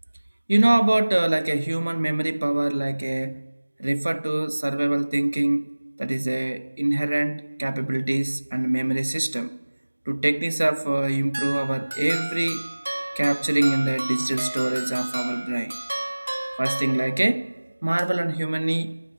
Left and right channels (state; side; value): inverted; both; correlation -1.00